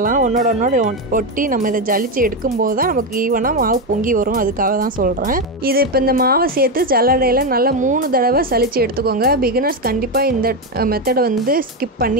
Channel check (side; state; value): both; normal; correlation 0.10